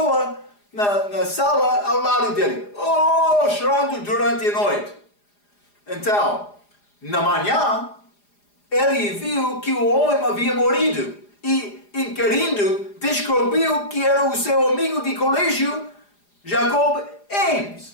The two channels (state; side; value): late; right; 4.9 ms